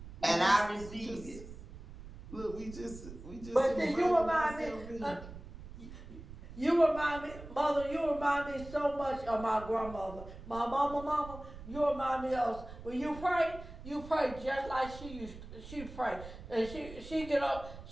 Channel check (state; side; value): noise; right; rumble, 14 dB below the sound